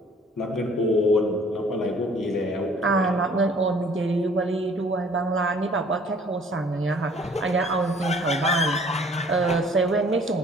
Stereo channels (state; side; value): normal; both; correlation 0.55